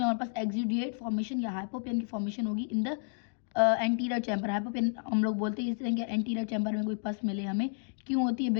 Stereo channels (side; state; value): right; silent; digital silence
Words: हमारे पास एक्सुडिएट फॉर्मेशन या हाइपोपियन की फॉर्मेशन होगी इन द एंटीरियर चैम्बर। हाइपोपियन हम लोग बोलते हैं इस तरह के एंटीरियर चैम्बर में कोई पस मिले हमें, क्यों होती है,